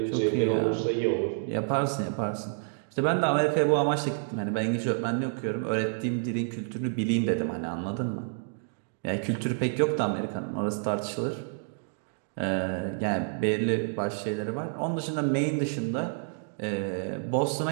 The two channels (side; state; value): left; silent; digital silence